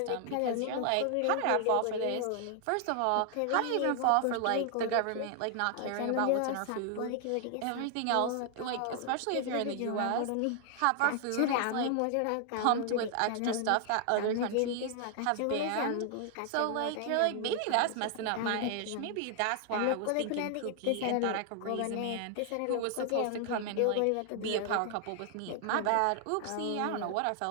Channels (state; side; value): different; both; correlation 0.00